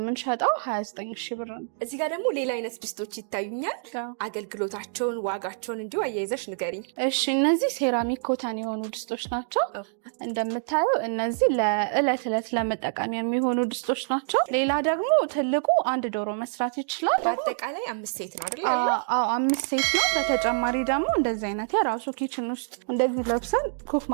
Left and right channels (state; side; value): silent; left; digital silence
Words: 29,000 ብር ነው። እዚህ ጋር ደግሞ ሌላ አይነት ድስቶች ይታዩኛል። አገልግሎታቸውን ዋጋቸውን እንዲሁ አያይዘሽ ንገሪኝ። እሺ እነዚህ ሴራሚክ ኮተን የሆኑ ድስቶች ናቸው። እንደምታዩ እነዚህ ለእለት ለመጠቀም የሚሆኑ ድስቶች ናቸው። ሌላ ደግሞ ትልቁ 1 ዶሮ መስራት ይችላል። በአጠቃላይ 5 ሴት ነው አይደል? አዎ 5 ሴት ነው። በተጨማሪ ደግሞ እንደዚህ አይነት የራሱ ኪችን ውስጥ እንደዚህ ለብሰን ኩክ